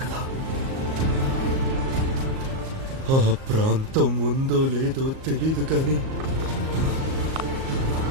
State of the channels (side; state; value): left; late; 38 ms